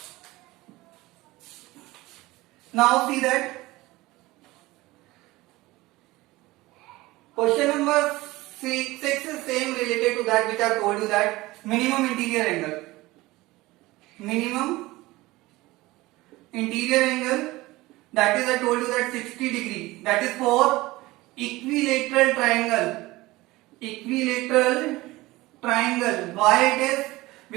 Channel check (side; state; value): left; quieter; 19.6 dB